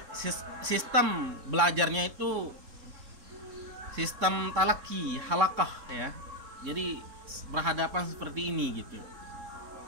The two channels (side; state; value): left; late; 3.7 ms